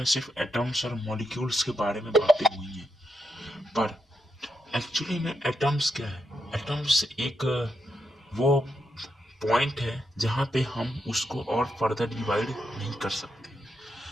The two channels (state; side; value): normal; both; correlation 0.83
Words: सिर्फ एटम्स और मॉलिक्यूल्स के बारे में बातें हुई हैं, पर एक्चुअली में एटम्स क्या है। एटम्स एक वो पॉइंट है जहाँ पे हम उसको और फर्दर डिवाइड नहीं कर सकते।